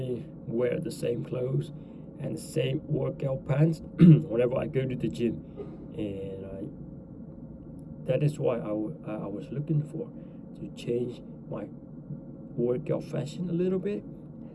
wear the same clothes and the same workout pants whenever I go to the gym, and that is why I was looking for to change my workout fashion a little bit.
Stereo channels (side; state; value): both; identical; correlation 1.00